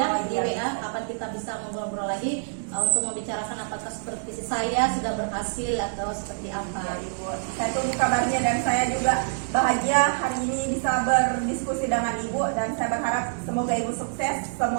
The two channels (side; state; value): left; silent; digital silence